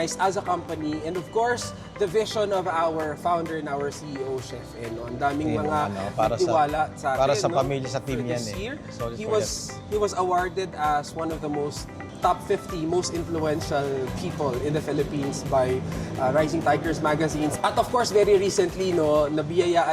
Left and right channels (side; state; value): both; identical; correlation 1.00